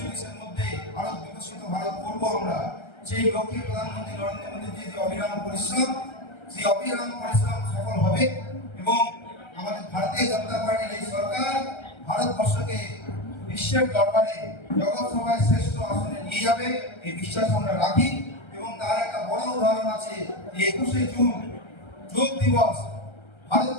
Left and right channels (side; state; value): right; late; 1.3 ms